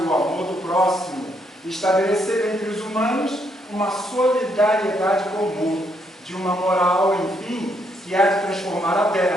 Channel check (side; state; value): both; normal; correlation 0.74